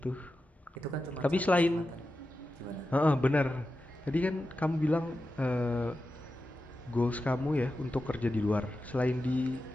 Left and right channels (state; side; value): normal; both; correlation 0.91